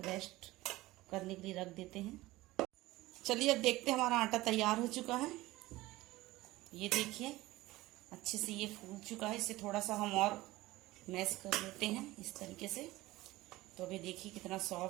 रेस्ट करने के लिए रख देते हैं। चलिए अब देखते हैं हमारा आटा तैयार हो चुका है। ये देखिए अच्छे से ये फूल चुका है। इसे थोड़ा सा हम और मैश कर लेते हैं इस तरीके से। तो अभी देखिए कितना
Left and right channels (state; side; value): quieter; left; 18.4 dB